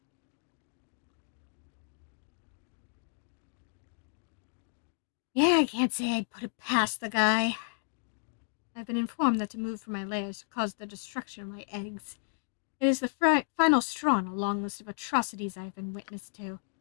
Yeah, I can't say I'd put it past the guy. I've been informed that to move from my lairs caused the destruction of my eggs. It is the final straw in a long list of atrocities I have been witness to. To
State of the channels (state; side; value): silent; right; digital silence